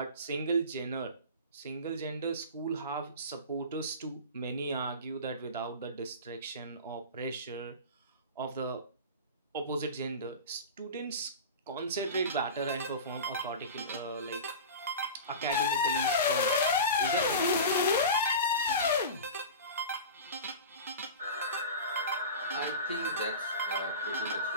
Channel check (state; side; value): inverted; both; correlation -0.31